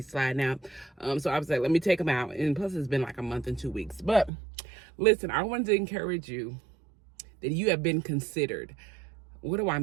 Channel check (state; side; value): drops out; left; at 4.3 s